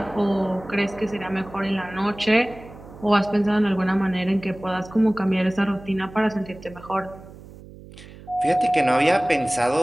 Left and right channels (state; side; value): noise; right; hum, 18 dB below the sound